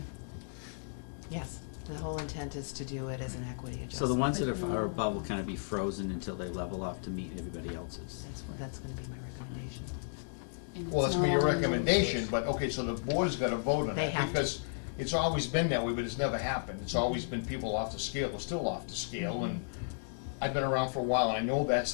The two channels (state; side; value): silent; right; digital silence